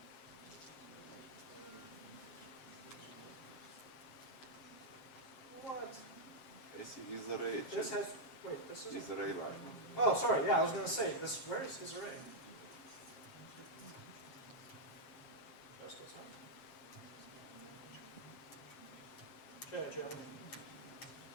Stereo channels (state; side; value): late; right; 7.5 ms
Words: What? I see isArray. This has, wait, this is isArray line. Oh, sorry, yeah, I was going to say, where is isArray? Just goes on.